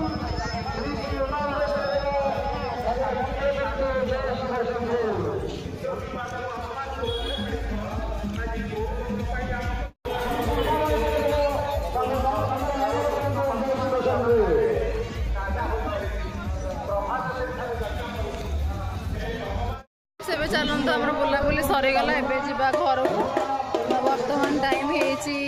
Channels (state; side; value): identical; both; correlation 1.00